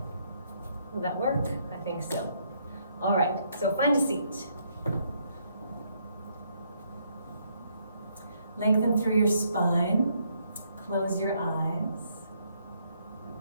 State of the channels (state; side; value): inverted; both; correlation -0.72